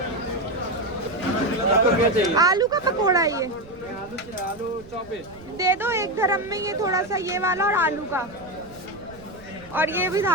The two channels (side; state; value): right; noise; rumble, 22 dB below the sound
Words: आपको क्या चाहिए? आलू का पकोड़ा है ये, आलू चॉप है। दे दो 1 धर्म में ये थोड़ा सा ये वाला और आलू का, और ये भी